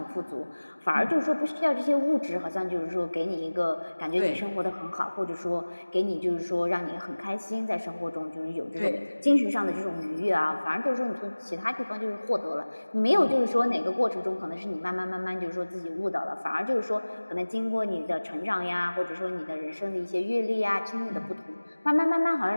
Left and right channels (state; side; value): inverted; both; correlation -1.00